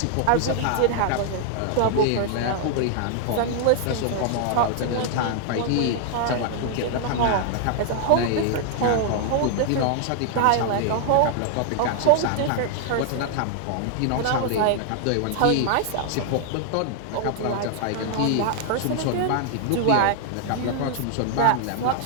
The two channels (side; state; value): both; different; correlation 0.00